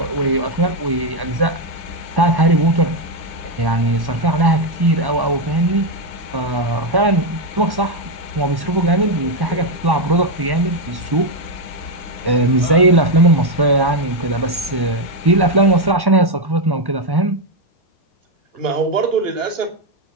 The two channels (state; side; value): late; left; 1.1 ms